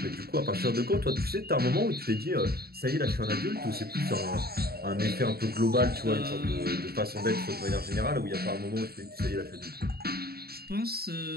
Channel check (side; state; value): left; late; 0.45 ms